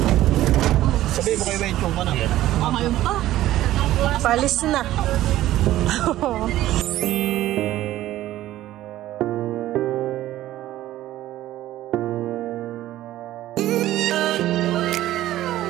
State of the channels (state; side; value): quieter; left; 14.5 dB